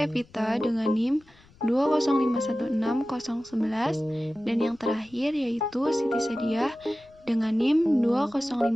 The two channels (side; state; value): left; noise; rumble, 28 dB below the sound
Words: dengan NIM 205160011, dan yang terakhir yaitu Siti Sadiah dengan NIM